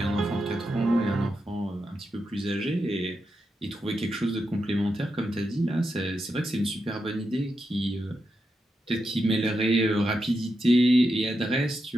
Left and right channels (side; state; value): both; normal; correlation 0.86